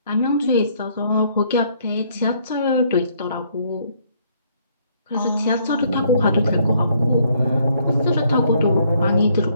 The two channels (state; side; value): inverted; both; correlation -0.67